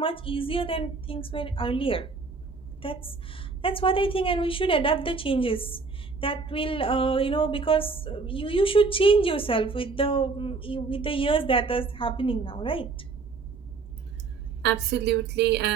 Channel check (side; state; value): left; quieter; 4.3 dB